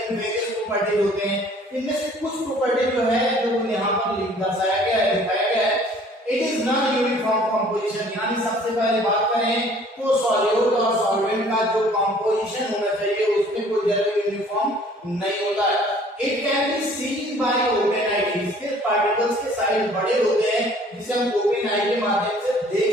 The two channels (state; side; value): normal; both; correlation 0.54